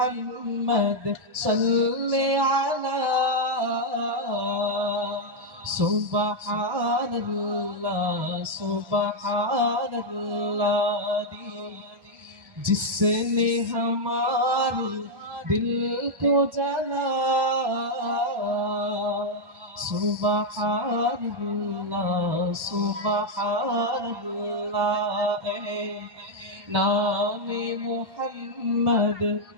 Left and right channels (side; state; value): left; late; 1.2 ms